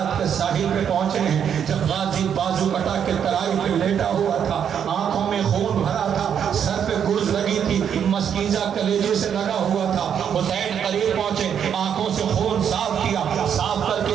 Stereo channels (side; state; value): left; quieter; 8.3 dB